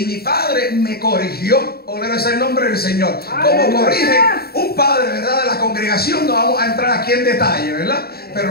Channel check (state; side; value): late; right; 0.45 ms